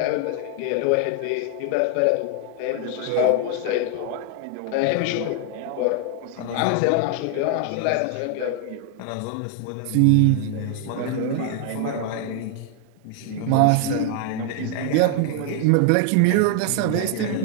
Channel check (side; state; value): both; different; correlation 0.00